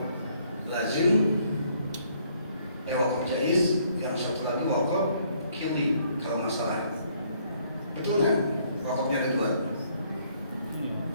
jaizin, wakaf jaiz, yang satu lagi wakaf kili kalau masalah. Betul nggak? Wakafnya ada dua.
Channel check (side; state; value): both; inverted; correlation -0.66